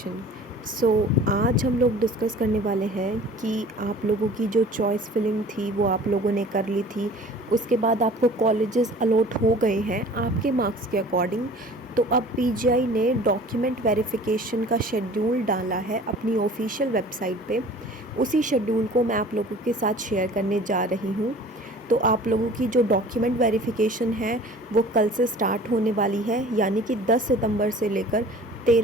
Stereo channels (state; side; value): normal; both; correlation 0.46